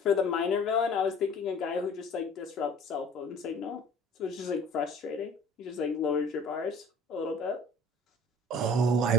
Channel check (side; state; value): both; normal; correlation 0.48